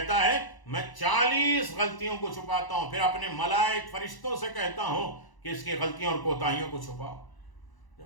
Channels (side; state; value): right; late; 1.0 ms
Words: ہے میں 40 غلطیوں کو چھپاتا ہوں، پھر اپنے ملائک فرشتوں سے کہتا ہوں کہ اس کی غلطیوں اور کوتاہیوں کو چھپاؤ.